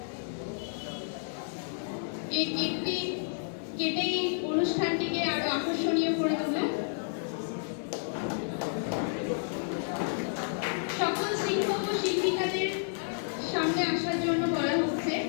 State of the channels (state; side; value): silent; right; digital silence